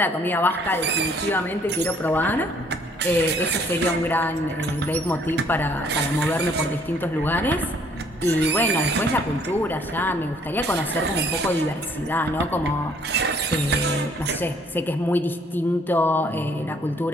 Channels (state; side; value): normal; both; correlation 0.62